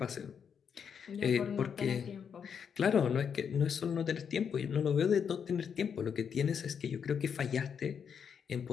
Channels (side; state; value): right; quieter; 7.2 dB